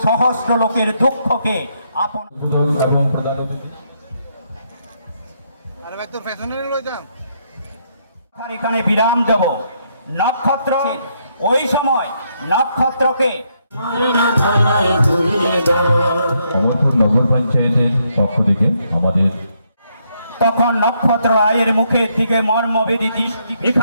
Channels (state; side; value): inverted; both; correlation -0.75